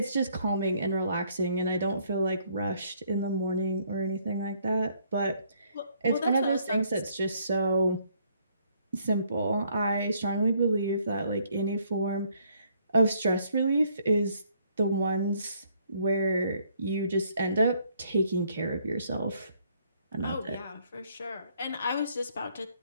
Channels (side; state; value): both; inverted; correlation -0.67